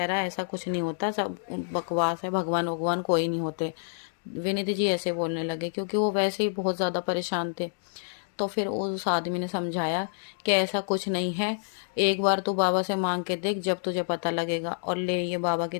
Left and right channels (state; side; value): silent; right; digital silence